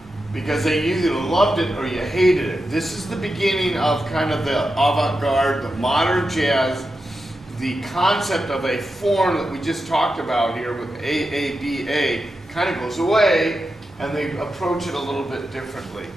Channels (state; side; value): normal; both; correlation 0.89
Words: because they either loved it or you hated it. This is the beginning of kind of the avant-garde, the modern jazz, the concept of a form that we just talked about here with AABA kind of goes away, and they approach it a little bit differently.